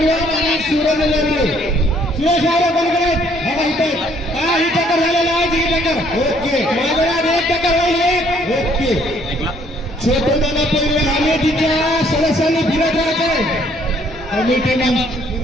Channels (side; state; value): both; normal; correlation 0.64